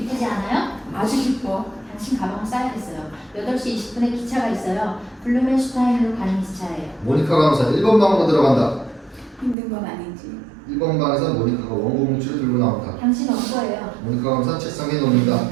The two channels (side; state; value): left; drops out; at 9.6 s